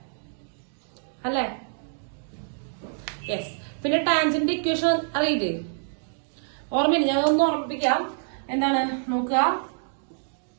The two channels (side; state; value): left; silent; digital silence